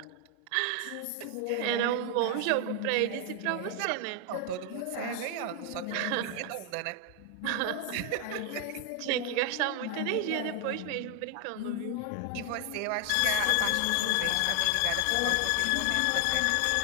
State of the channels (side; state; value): both; different; correlation 0.00